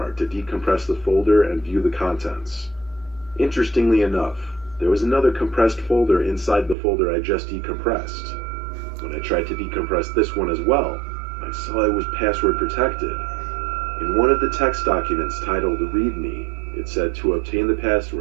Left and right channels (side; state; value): left; drops out; at 6.8 s